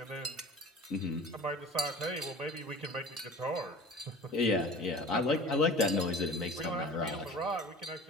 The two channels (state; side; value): normal; both; correlation 0.41